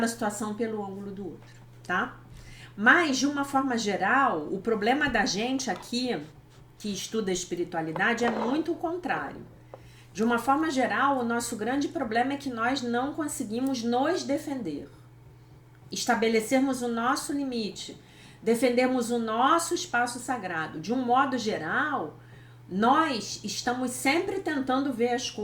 situação pelo ângulo do outro, tá? Mas, de uma forma geral, o problema da gente aqui, que estuda a espiritualidade, é muito o contrário. De uma forma geral, o nosso grande problema é que nós não conseguimos nos defender. Estabelecermos o nosso limite, defendermos o nosso espaço sagrado. De um modo geral, nós estamos sempre tentando ver as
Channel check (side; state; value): both; identical; correlation 1.00